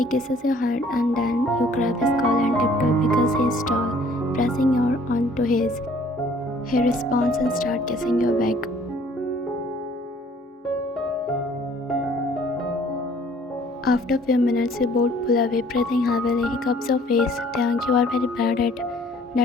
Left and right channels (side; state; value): both; normal; correlation 0.57